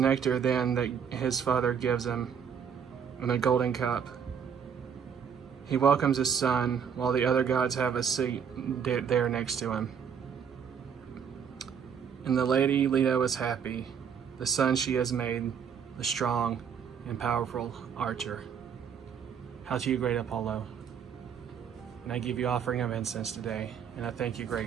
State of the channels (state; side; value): quieter; left; 7.5 dB